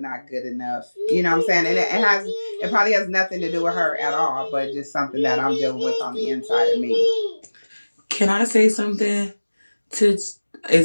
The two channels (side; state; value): both; inverted; correlation -1.00